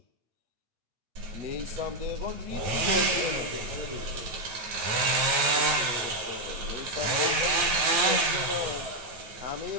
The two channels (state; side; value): late; left; 9.3 ms